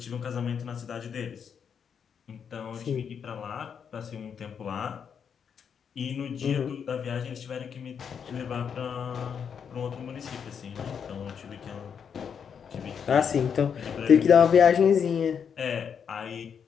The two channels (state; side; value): quieter; right; 7.2 dB